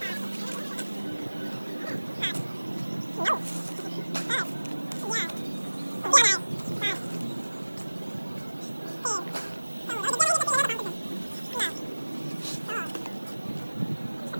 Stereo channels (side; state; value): both; inverted; correlation -1.00